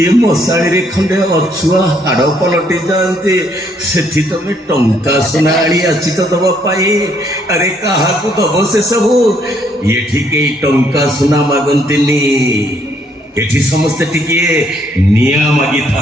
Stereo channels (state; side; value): normal; both; correlation 0.69